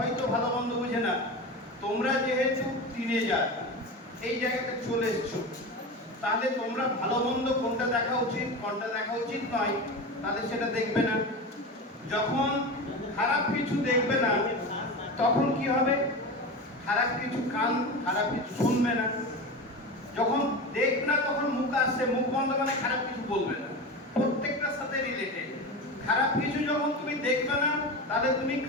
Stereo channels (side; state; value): both; normal; correlation 0.25